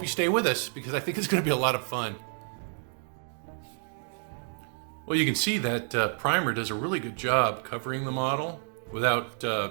you stay with us because I think it's going to be a lot of fun. Well, you can see that primer does a really good job covering the model without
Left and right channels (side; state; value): left; silent; 56 dB below the other